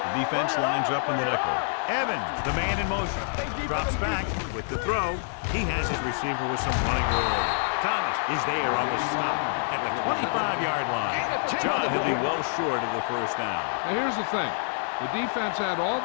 The defense lines up in the nickel. Evans, the man in motion. Drops back with the throw. He has his receiver with some running room. Thomas is there on the stop at the 25-yard line. John, he'll be well short of the 1st down. Now here's the thing. The defense had all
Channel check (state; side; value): silent; right; digital silence